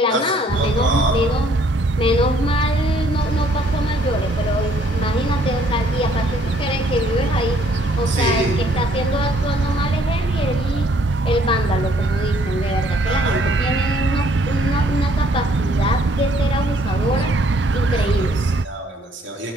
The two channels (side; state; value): both; normal; correlation 0.64